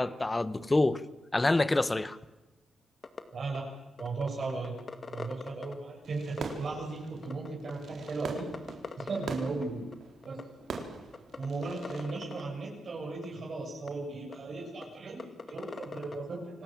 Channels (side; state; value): both; normal; correlation 0.90